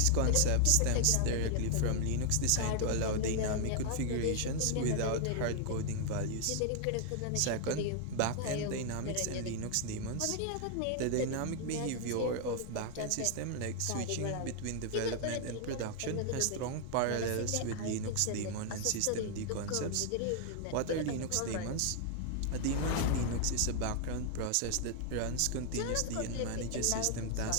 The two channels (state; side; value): different; both; correlation 0.00